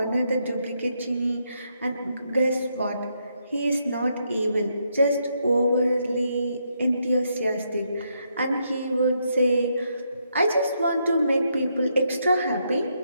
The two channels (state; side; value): inverted; both; correlation -0.78